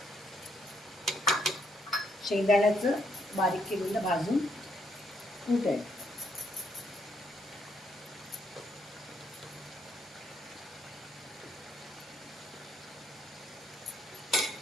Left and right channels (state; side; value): normal; both; correlation 0.74